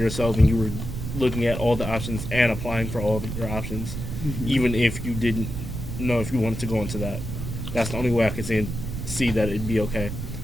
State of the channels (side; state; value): right; noise; rumble, 6 dB below the sound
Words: and you were looking at all the options and applying for all of your options, even if you didn't know if you wanted to go into that, that's the only way I could see that it'd be okay.